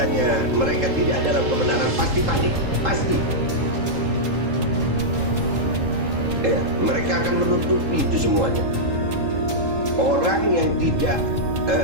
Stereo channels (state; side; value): late; left; 3.8 ms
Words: mereka tidak dalam kebenaran pasti panik, pasti. Ya, mereka akan menutupi itu semuanya. Orang yang tidak